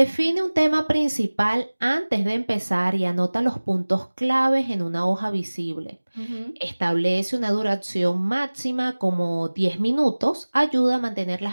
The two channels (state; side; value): inverted; both; correlation -1.00